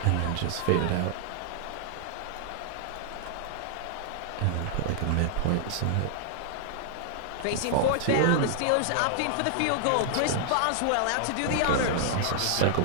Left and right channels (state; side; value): different; both; correlation 0.00